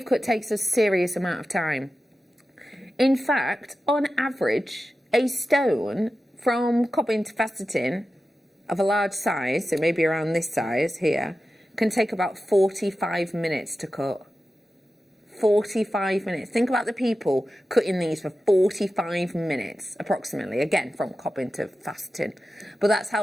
cut takes a serious amount of time. In fact, on average, a stone from cobbing to faceting of a large size, so maybe around this size here, can take about 45 minutes to cut. 45 minutes. Think about the people cutting these for 45 minutes, approximately, again, from cobbing to faceting. But that's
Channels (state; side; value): normal; both; correlation 0.93